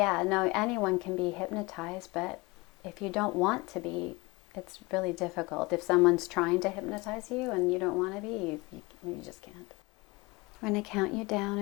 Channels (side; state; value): right; quieter; 24.1 dB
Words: no, anyone can be hypnotized, but if you don't want to be, it's really difficult. If someone's trying to hypnotize you and you don't want to be, you just can't. I'm going to count you down